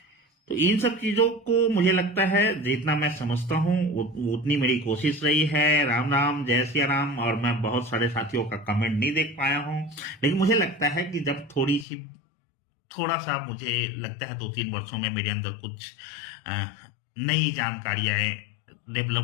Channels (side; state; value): right; drops out; at 11.9 s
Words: तो इन सब चीजों को मुझे लगता है जितना मैं समझता हूं उतनी मेरी कोशिश रही है। राम राम, जय सिया राम। और मैं बहुत सारे साथियों का कमेंट नहीं देख पाया हूं, लेकिन मुझे लगता है कि जब थोड़ा सा मुझे लगता है 2-3 वर्षों में मेरे अंदर कुछ नई जानकारियां